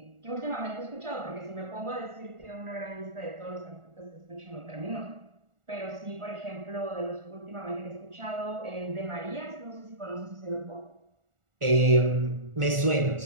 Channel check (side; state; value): left; late; 1.4 ms